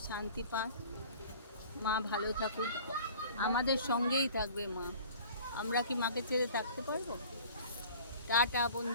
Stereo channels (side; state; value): both; inverted; correlation -0.46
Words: শান্তি পাক, মা ভালো থাকুক, আমাদের সঙ্গেই থাকবে মা। আমরা কি মাকে ছেড়ে থাকতে পারবো? টাটা